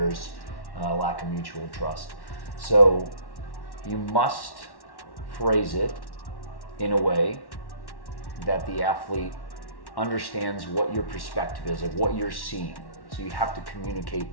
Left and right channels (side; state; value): right; late; 1.1 ms